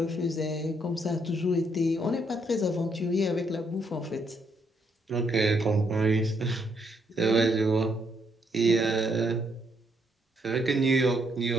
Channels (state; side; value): normal; both; correlation 0.74